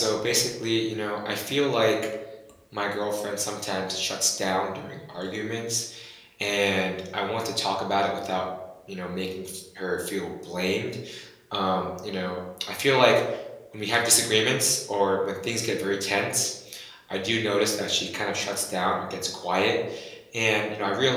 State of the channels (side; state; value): both; identical; correlation 1.00